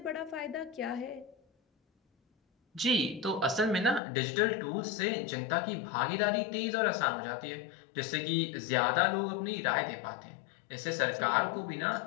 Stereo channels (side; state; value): right; drops out; at 4.0 s